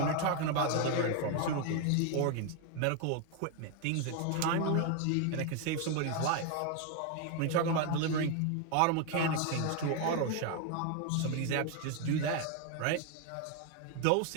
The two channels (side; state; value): both; different; correlation 0.01